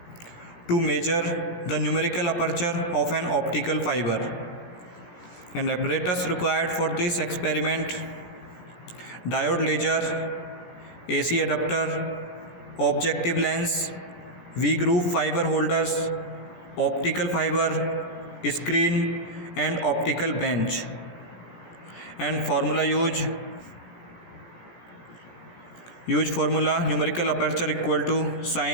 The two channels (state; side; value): late; right; 17 ms